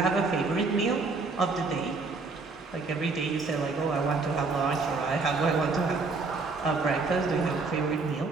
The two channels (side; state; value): left; quieter; 4.0 dB